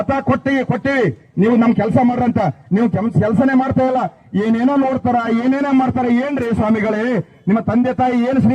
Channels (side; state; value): both; identical; correlation 1.00